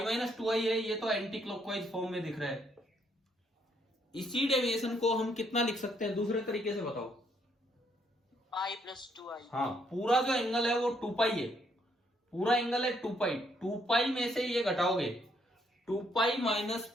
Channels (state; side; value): normal; both; correlation 0.71